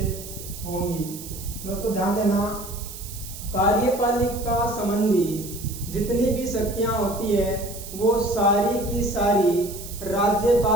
होंगी। दोस्तों, ध्यान देना, कार्यपालिका संबंधी जितनी भी शक्तियां होती है वो सारी की सारी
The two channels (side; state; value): right; noise; hiss, 13 dB below the sound